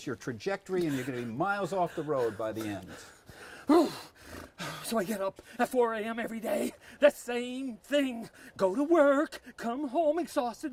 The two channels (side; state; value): both; identical; correlation 1.00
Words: your trajectory, and you're going to be miles off the road by the end. So I get up at 4 a.m. every day. The same thing. Go to work, come home